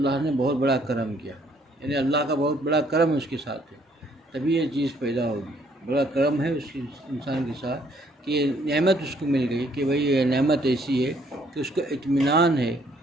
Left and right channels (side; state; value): both; normal; correlation 0.65